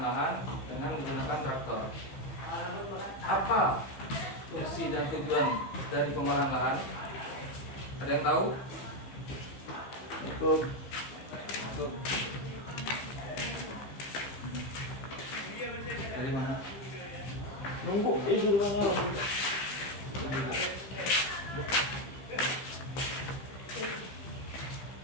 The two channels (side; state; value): right; late; 15 ms